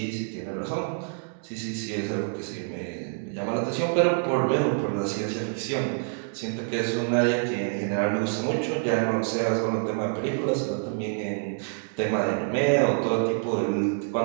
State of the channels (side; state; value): left; silent; digital silence